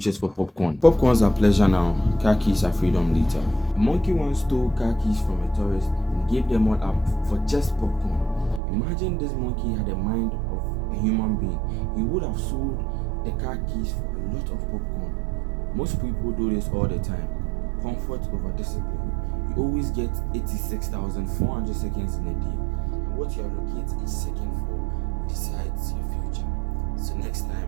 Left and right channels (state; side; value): drops out; left; at 8.6 s